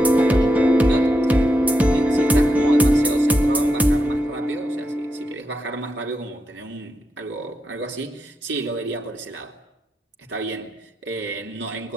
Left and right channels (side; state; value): both; normal; correlation 0.85